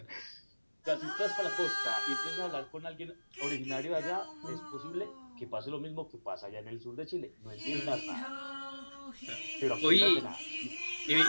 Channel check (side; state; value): both; inverted; correlation -1.00